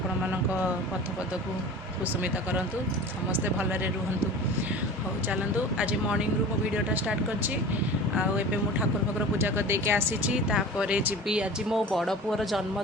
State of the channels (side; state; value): both; normal; correlation 0.37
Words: मानक पथ पद को कुसुमित करंतु समस्ते भलरे रुहंतु। हो चलतु आज मॉर्निंग रु मो वीडियोटा स्टार्ट करछि आबे मु ठाकुर फाकुर पूजा कर देके आसीछि तापरे जीवी आज मो बड़ पुअर